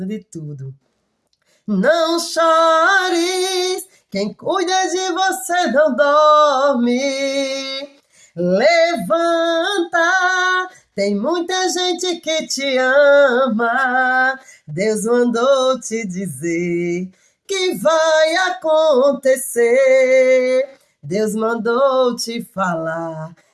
de tudo. Não chores, quem cuida de você não dorme. Levanta, tem muita gente que te ama. Deus mandou te dizer que vai acontecer. Deus mandou te falar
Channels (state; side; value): identical; both; correlation 1.00